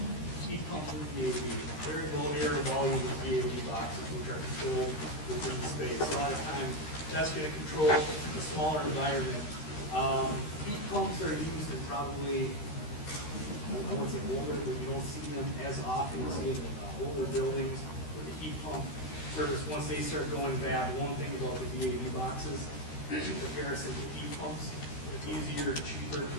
heat pumps with VAV, variable air volume with VAV boxes, which are controlled within the space. A lot of times, that's going to control a smaller environment. Heat pumps are used in probably, I won't say older, but you don't see them as often. You see them in older buildings where the heat pump service, once they start going bad, one thing about the VAV boxes, in comparison to heat pumps, it's easier and cheaper to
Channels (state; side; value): late; right; 13 ms